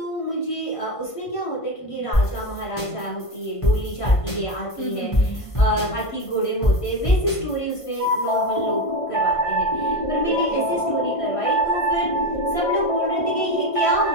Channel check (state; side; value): late; right; 1.5 ms